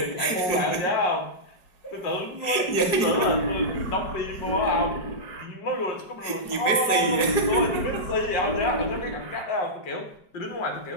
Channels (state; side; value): late; right; 4.8 ms